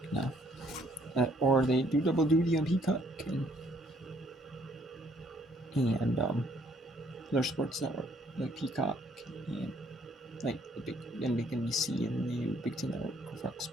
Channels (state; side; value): normal; both; correlation 0.65